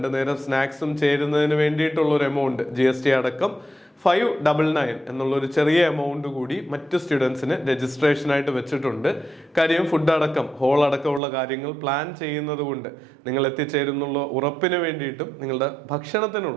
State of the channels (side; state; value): left; drops out; at 11.2 s